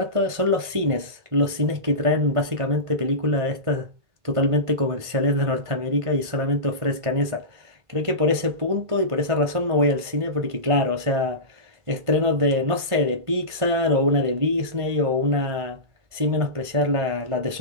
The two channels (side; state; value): left; late; 1.5 ms